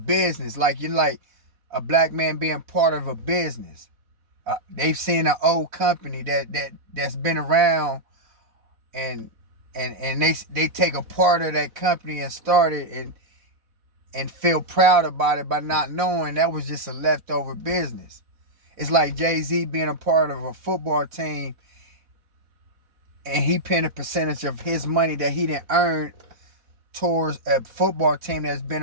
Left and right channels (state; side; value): late; left; 4.1 ms